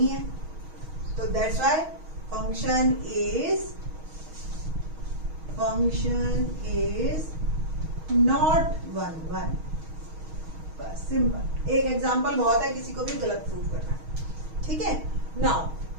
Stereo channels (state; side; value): late; left; 6.3 ms